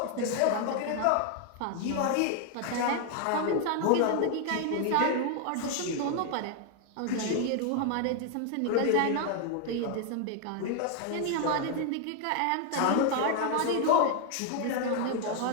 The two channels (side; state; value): both; different; correlation 0.00